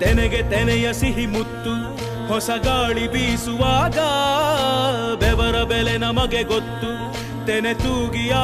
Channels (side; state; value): both; identical; correlation 1.00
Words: ತೆನೆಗೆ ತೆನೆಯ ಸಿಹಿ ಮುತ್ತು ಹೊಸ ಗಾಳಿ ಬೀಸುವಾಗ ಬೆವರ ಬೆಲೆ ನಮಗೆ ಗೊತ್ತು ತೆನೆ ತೂಗಿ